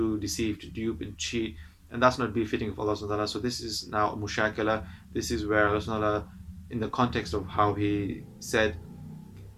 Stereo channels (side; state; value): both; identical; correlation 1.00